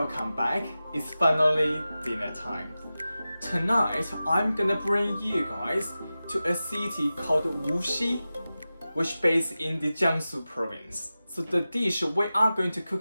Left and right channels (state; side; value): inverted; both; correlation -0.95